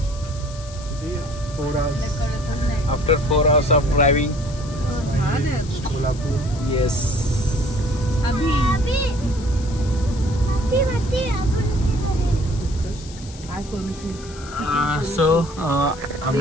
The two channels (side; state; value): left; noise; hiss, 18 dB below the sound